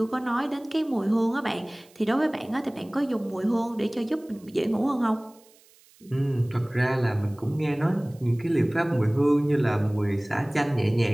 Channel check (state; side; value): noise; right; hiss, 29 dB below the sound